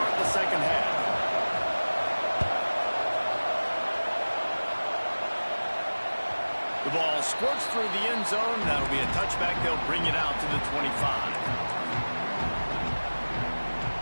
the 2nd half. The ball squirts through the end zone. That'll be a touchback. They'll bring it out to the 25.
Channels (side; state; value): both; inverted; correlation -1.00